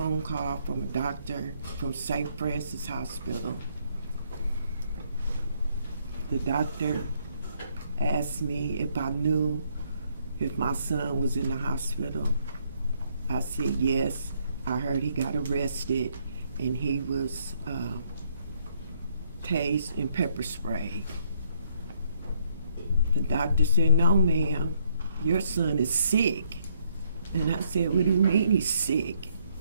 call from a doctor from St. Francis Hospital. The doctor asked me if I knew if my son was in the hospital. I said yes. I heard he got arrested and he was tased and pepper sprayed. The doctor said, no, ma'am, your son is sick. And I said, what do you mean he's sick?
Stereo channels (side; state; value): both; inverted; correlation -0.70